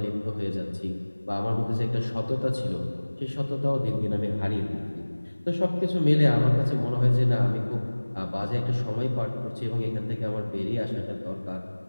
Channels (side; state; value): both; inverted; correlation -1.00